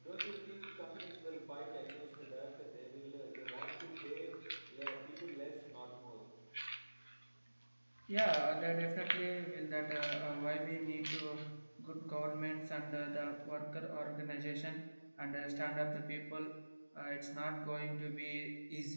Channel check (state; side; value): inverted; both; correlation -1.00